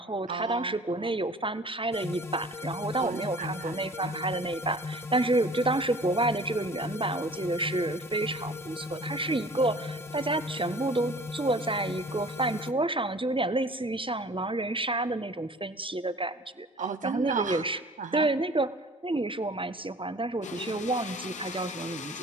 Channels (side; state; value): both; normal; correlation 0.48